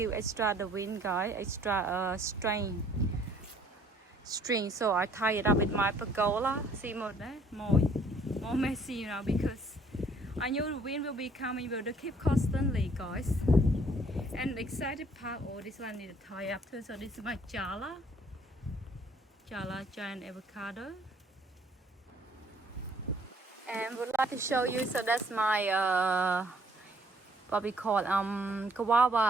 extra the wind, guys, extra string. So I tie it up with my pergola. See more there, more messy now, because I knew the wind will be coming. Will keep constantly, guys. And the excited part, oh, this one need to tie up too. So this is my giant avocado. And would like to show you, so that's my what we call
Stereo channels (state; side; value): normal; both; correlation 0.61